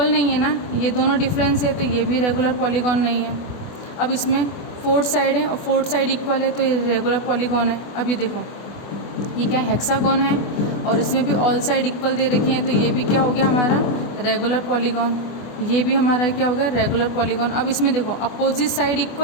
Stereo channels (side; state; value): right; late; 24 ms